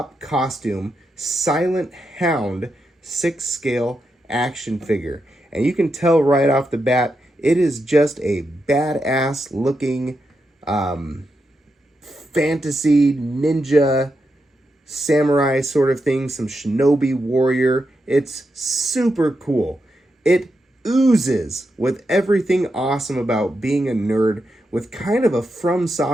Silent Hound 6-scale action figure. And you can tell right off the bat, it is just a badass looking fantasy ninja samurai sort of thing, some Shinobi warrior. It's super cool. It oozes with everything awesome about being a nerd with kind of a From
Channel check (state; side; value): normal; both; correlation 0.85